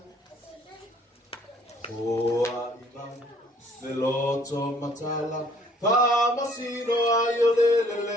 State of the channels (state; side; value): normal; both; correlation 0.59